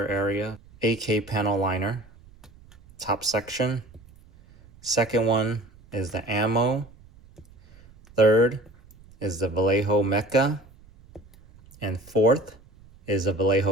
area. AK panel liner, top section. Second one is the ammo. Third is the Vallejo Mecha. And fourth is the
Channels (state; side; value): noise; right; rumble, 25 dB below the sound